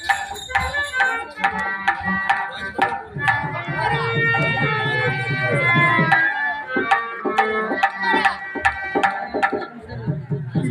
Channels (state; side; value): identical; both; correlation 1.00